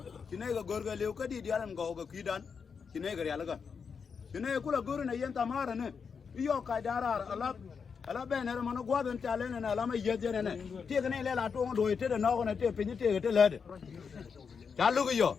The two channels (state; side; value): quieter; right; 6.0 dB